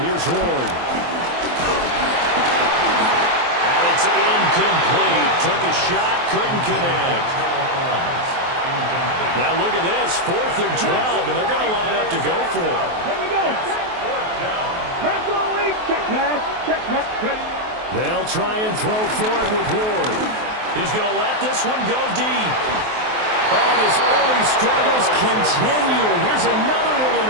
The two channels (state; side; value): late; left; 23 ms